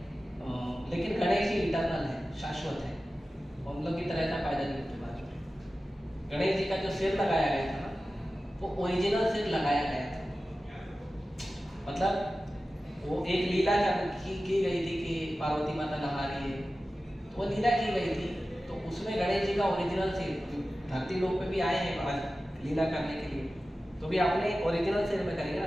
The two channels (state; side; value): normal; both; correlation 0.95